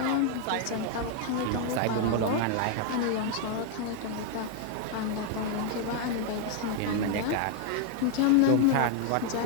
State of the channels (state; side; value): different; both; correlation 0.00